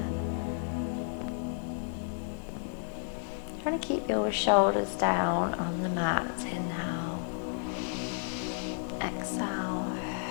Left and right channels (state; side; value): silent; right; 56 dB below the other